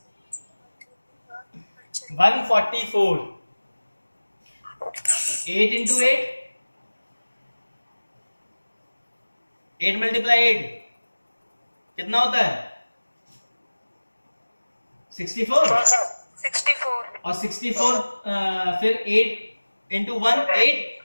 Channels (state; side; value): inverted; both; correlation -1.00